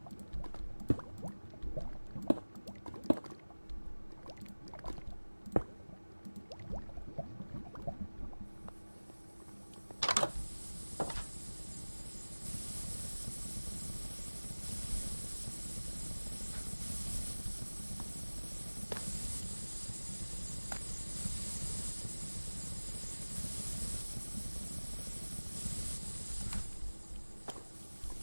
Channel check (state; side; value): inverted; both; correlation -1.00